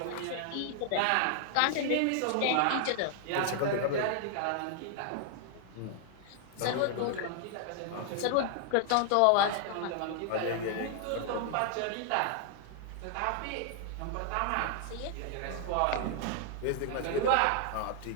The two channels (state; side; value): different; both; correlation 0.00